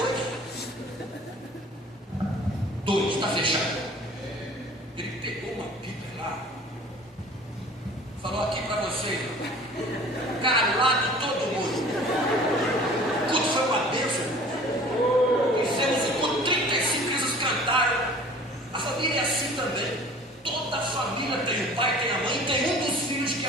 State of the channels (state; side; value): normal; both; correlation 0.46